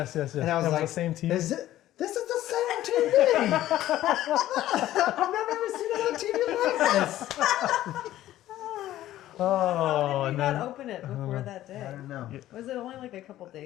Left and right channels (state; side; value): quieter; right; 13.9 dB